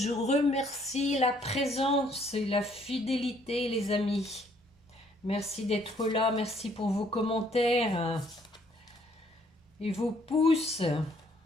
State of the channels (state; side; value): normal; both; correlation 0.65